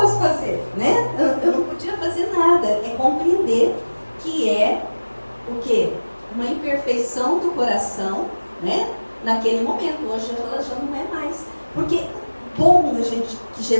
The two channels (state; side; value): inverted; both; correlation -1.00